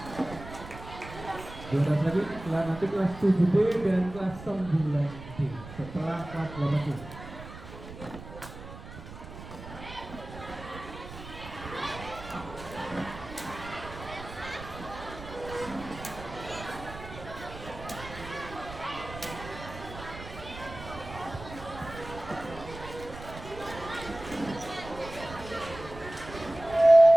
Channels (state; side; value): noise; right; rumble, 13 dB below the sound